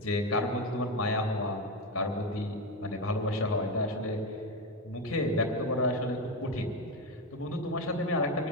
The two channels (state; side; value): normal; both; correlation 0.14